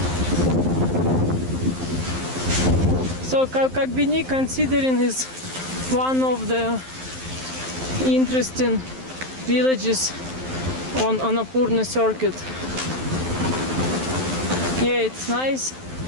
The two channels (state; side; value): late; left; 12 ms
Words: So Ghorepani, considering, is one of the interesting villages on Annapurna circuit. Yeah, it's nice.